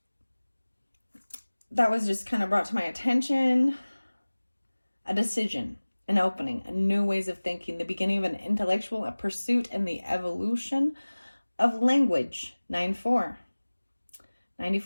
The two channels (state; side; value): inverted; both; correlation -1.00